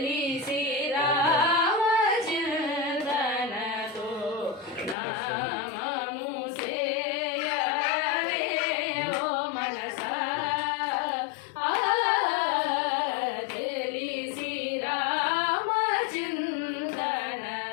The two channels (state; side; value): drops out; right; at 5.0 s